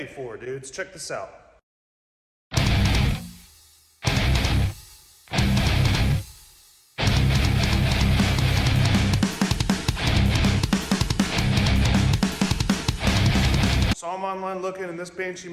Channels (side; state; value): both; identical; correlation 1.00